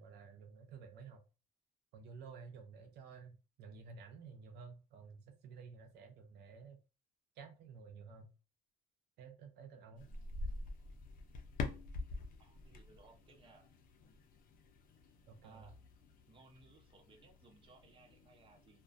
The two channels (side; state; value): both; normal; correlation 0.58